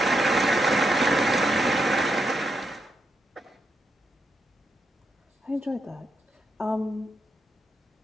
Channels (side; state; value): both; normal; correlation 0.83